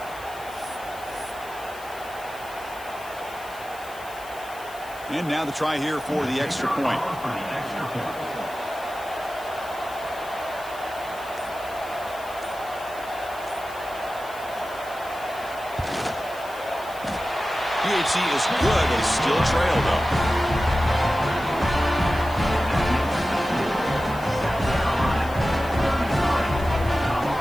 And now the try here for the extra point. PHC is good. They still trail, though.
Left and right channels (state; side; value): noise; left; hiss, 19 dB below the sound